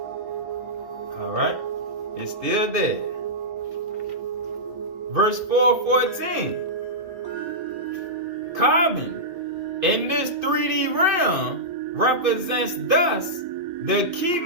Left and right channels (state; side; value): late; left; 2.6 ms